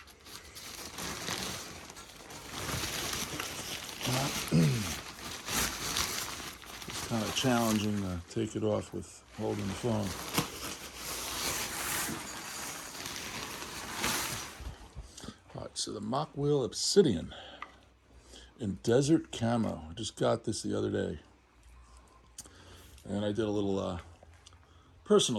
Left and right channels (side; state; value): both; identical; correlation 1.00